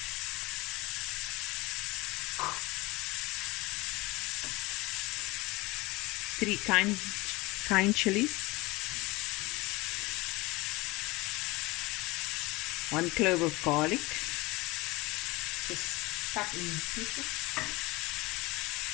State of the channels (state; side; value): quieter; right; 22.4 dB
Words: 3 kind chilies, 1 clove of garlic, just cut in pieces.